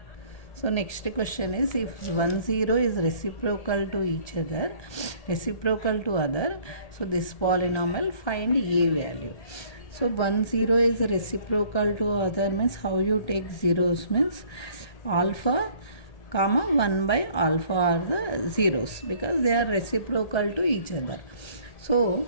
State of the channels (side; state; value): right; late; 1.8 ms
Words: So next question is, if 1 0 is reciprocal to each other, reciprocal to other, so this polynomial find a value. So 1 0 is reciprocal to other means how you take zeros means alpha comma 1 by alpha are the zeros because they are reciprocal to each other. So